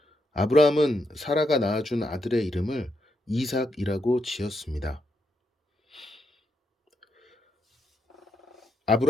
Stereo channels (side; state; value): both; normal; correlation 0.81